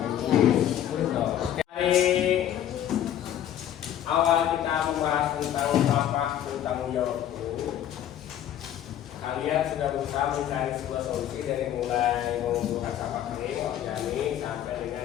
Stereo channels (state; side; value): quieter; right; 11.0 dB